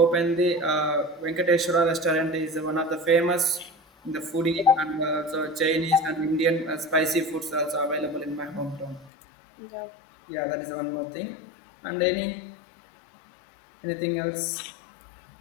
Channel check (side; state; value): right; drops out; at 9.1 s